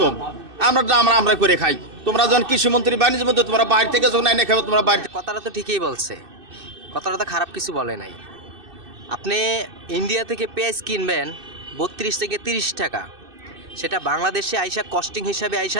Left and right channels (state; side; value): late; left; 2.6 ms